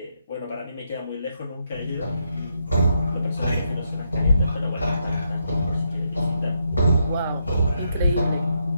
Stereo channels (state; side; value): inverted; both; correlation -0.79